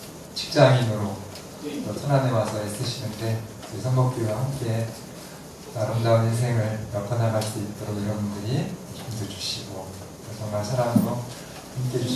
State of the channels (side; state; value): both; identical; correlation 1.00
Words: 직장인으로 또 천안에 와서 애쓰시는데 우리 선목교회와 함께 아름다운 인생을 엮어나갈 수 있도록 여러분들이 힘도 주시고 정말 사랑으로 함께